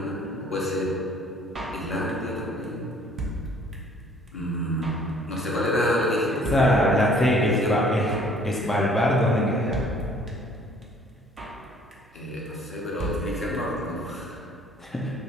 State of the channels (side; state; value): both; normal; correlation 0.56